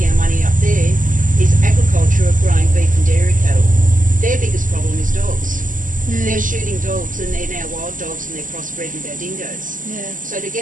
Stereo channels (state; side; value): late; left; 0.38 ms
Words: our money up there is agriculture of growing beef and dairy cattle. Their biggest problem is dogs. They're shooting dogs, and they're now wild dogs, and they're crossbred with our dingoes. So to get